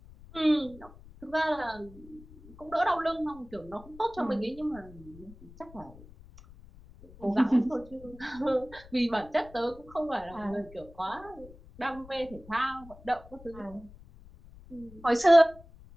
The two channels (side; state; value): left; noise; rumble, 20 dB below the sound